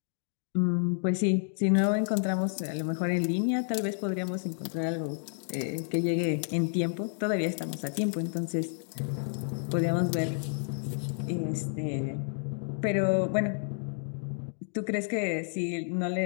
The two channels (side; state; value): right; silent; digital silence